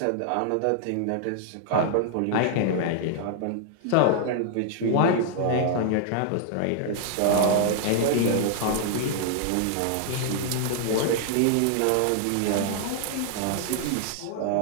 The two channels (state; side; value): different; both; correlation -0.01